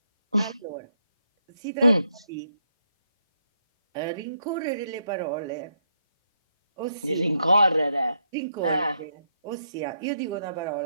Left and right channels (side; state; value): both; inverted; correlation -0.77